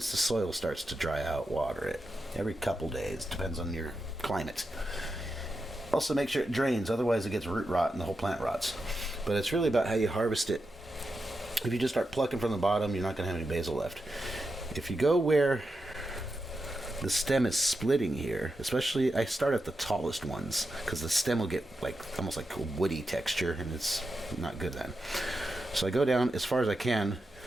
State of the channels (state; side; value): normal; both; correlation 0.88